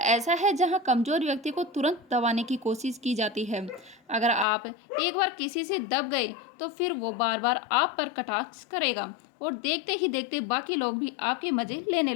है जहां कमज़ोर व्यक्ति को तुरंत दबाने की कोशिश की जाती है। अगर आप एक बार किसी से दब गए तो फिर वो बार बार आप पर कटाक्ष करेगा और देखते ही देखते बाकी लोग भी आपके मज़े लेने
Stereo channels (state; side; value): drops out; right; at 4.5 s